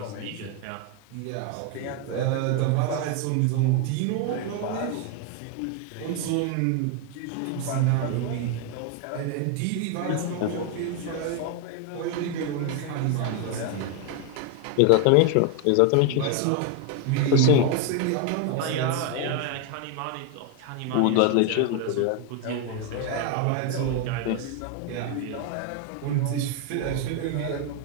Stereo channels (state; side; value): different; both; correlation 0.01